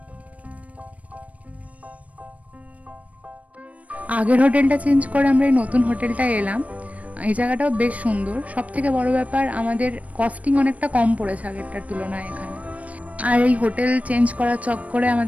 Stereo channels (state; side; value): late; left; 0.068 ms